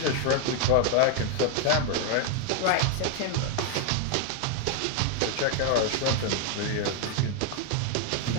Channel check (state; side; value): different; both; correlation 0.01